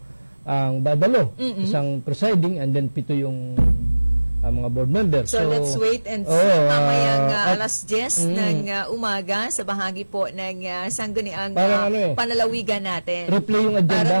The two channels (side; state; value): both; inverted; correlation -1.00